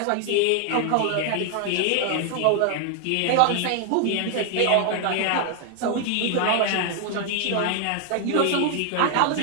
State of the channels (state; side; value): different; both; correlation 0.00